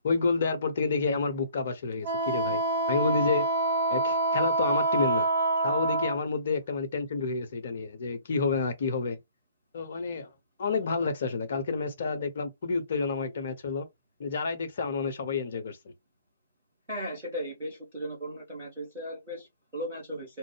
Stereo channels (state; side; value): inverted; both; correlation -0.55